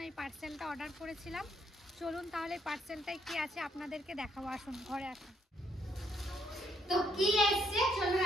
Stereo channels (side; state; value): both; normal; correlation 0.71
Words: এই পার্সেলটা অর্ডার করেছিলাম। চলুন তাহলে পার্সেলটায় কি আছে আপনাদেরকে দেখাবো, আসুন ঘরে আসুন। তো কি এসছে চলুন